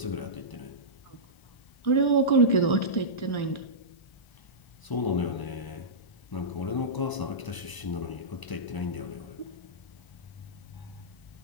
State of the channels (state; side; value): late; right; 1.0 ms